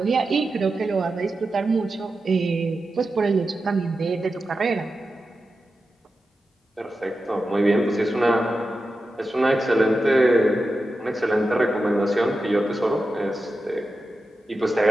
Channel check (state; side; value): normal; both; correlation 0.91